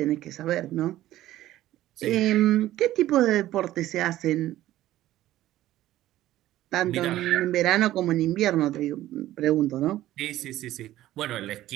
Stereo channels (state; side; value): quieter; left; 14.5 dB